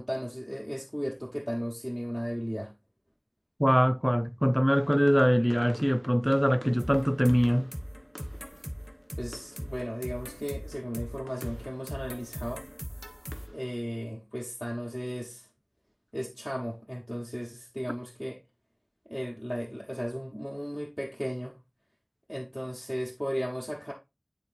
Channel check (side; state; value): both; identical; correlation 1.00